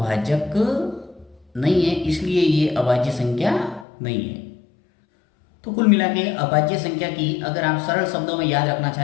नहीं है, इसलिए ये अभाज्य संख्या नहीं है। तो कुल मिला के अभाज्य संख्या की अगर आप सरल शब्दों में याद रखना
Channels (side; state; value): right; drops out; at 3.9 s